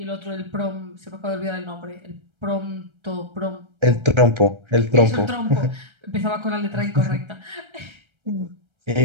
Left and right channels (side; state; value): left; late; 1.3 ms